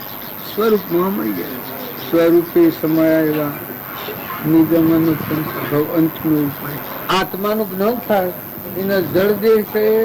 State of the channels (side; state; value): both; identical; correlation 1.00